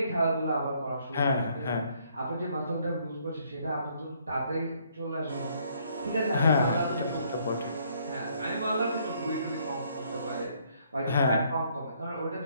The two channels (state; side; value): inverted; both; correlation -0.67